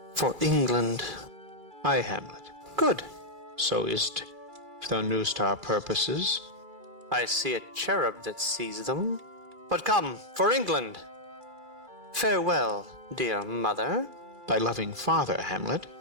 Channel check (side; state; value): left; late; 2.3 ms